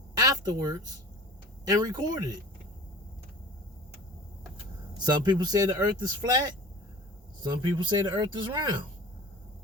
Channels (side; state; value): both; normal; correlation 0.40